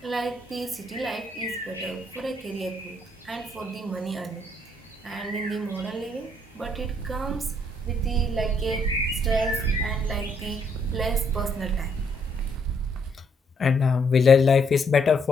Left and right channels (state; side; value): normal; both; correlation 0.71